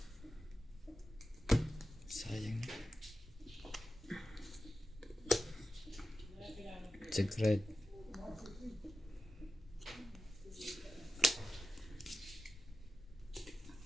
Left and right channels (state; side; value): normal; both; correlation 0.90